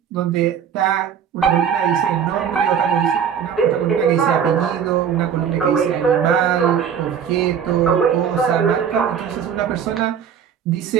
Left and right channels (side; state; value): left; quieter; 7.9 dB